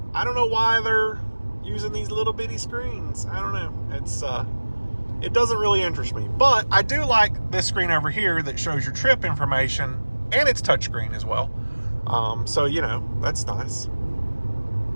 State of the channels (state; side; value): inverted; both; correlation -1.00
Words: I don't know why they're using these little bitty screens. I don't know. It doesn't really interest me, but I do like this screen over here that shows your trip information, and it's touchscreen as well. So, you know, that's nice.